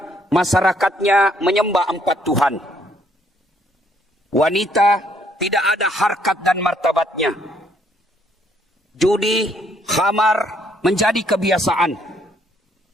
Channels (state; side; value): normal; both; correlation 0.68